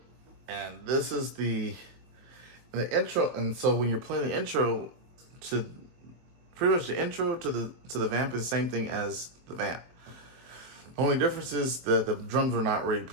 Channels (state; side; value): late; left; 23 ms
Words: and this is the intro. And so when you're playing the intro to, pretty much the intro to the Vamp is the same thing as the Vamp. Only difference is that the drums are not really